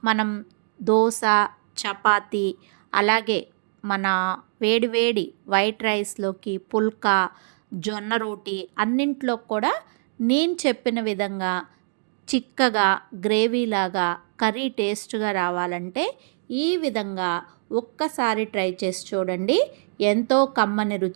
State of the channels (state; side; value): silent; left; digital silence